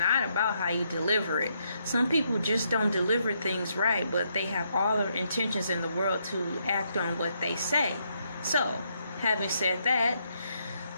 about how you deliver it. Some people just don't deliver things right, but they have all the intentions in the world to act on what they say. So, having said that,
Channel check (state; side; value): inverted; both; correlation -0.76